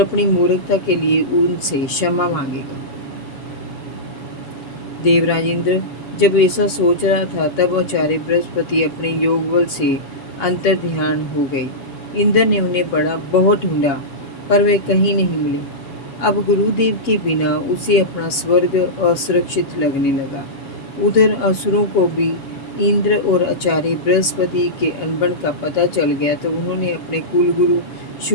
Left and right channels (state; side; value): late; right; 7.2 ms